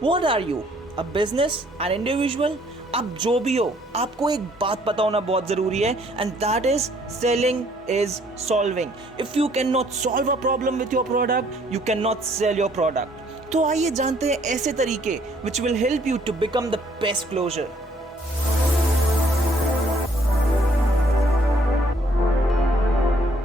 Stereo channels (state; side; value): normal; both; correlation 0.63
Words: are you? A business? An individual? आप जो भी हो आपको एक बात पता होना बहुत ज़रूरी है and that is selling is solving. If you cannot solve a problem with your product, you cannot sell your product. तो आइए जानते हैं ऐसे तरीके which will help you to become the best closer.